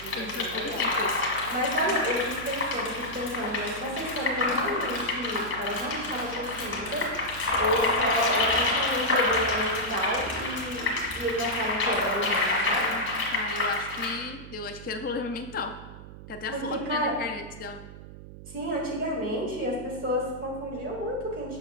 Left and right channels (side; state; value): right; noise; hum, 14 dB below the sound